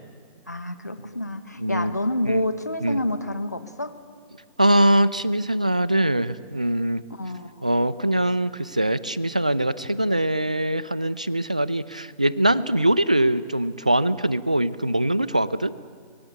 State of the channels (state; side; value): inverted; both; correlation -0.89